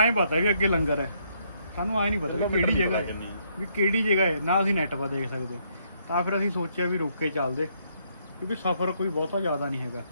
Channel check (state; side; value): inverted; both; correlation -0.72